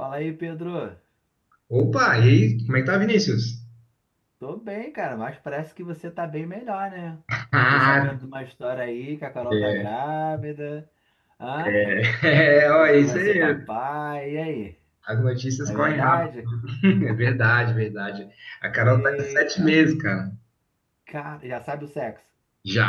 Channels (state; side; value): identical; both; correlation 1.00